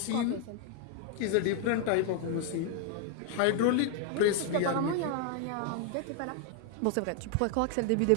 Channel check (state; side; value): different; both; correlation 0.00